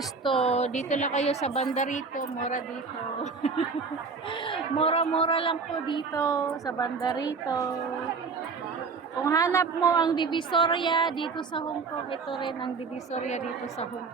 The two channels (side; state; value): left; quieter; 4.7 dB